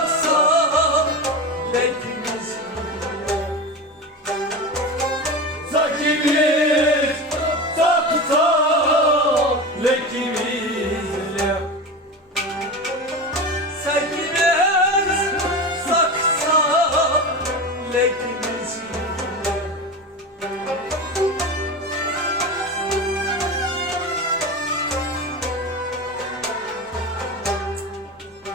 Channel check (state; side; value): normal; both; correlation 0.24